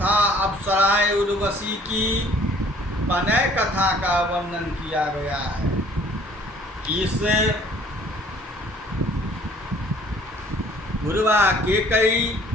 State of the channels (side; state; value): both; normal; correlation 0.55